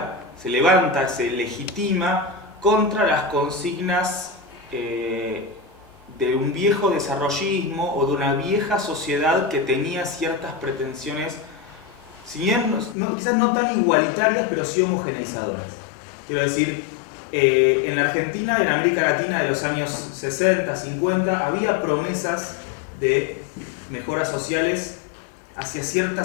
se levanta, se legitima contra las consignas de un viejo desarrollismo o de una vieja sociedad que tenía ciertas pretensiones, si bien, quizás no tan igualitarias, pero sí homogeneizadoras. Quiero decir, en la Argentina y en América Latina de los años 60, 50, había promesas de mejoras sociales hacia cierta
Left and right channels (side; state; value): right; drops out; at 13.0 s